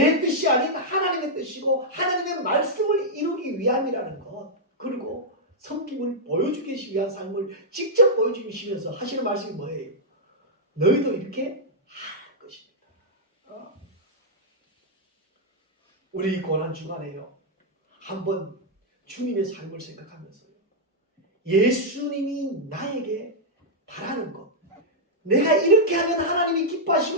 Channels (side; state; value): both; normal; correlation -0.06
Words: 뜻이 아닌 하나님의 뜻이고 하나님의 말씀을 이루기 위함이라는 것 그리고 섬김을 보여주기 위한 삶을 직접 보여주시면서 하시는 말씀이 뭐예요? 너희도 이렇게 하는 것입니다. 우리 고난 주간에요 한번 주님의 삶을 생각하면서요 예수님이 나에게 바라는 것 내가 이렇게 하면 하나님이